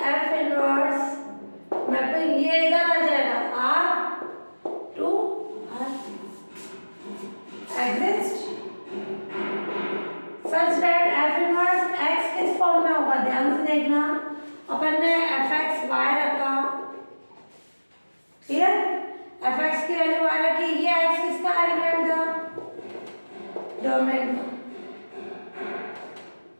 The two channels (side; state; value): both; inverted; correlation -1.00